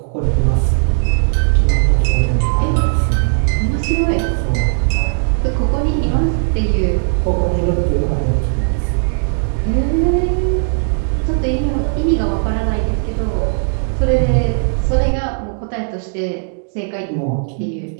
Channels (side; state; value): left; silent; digital silence